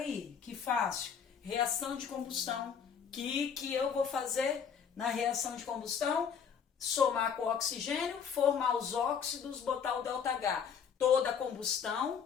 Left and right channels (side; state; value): right; quieter; 7.1 dB